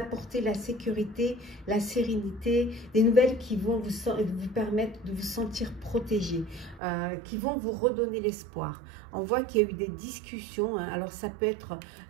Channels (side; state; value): left; drops out; at 6.8 s